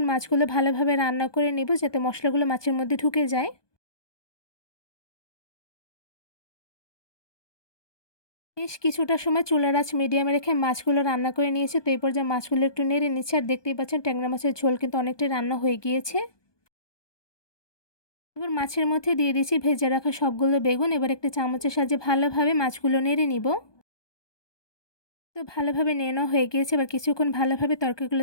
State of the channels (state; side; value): late; right; 1.2 ms